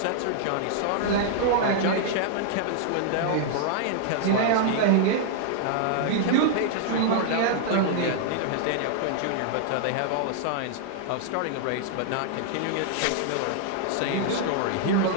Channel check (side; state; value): both; different; correlation -0.01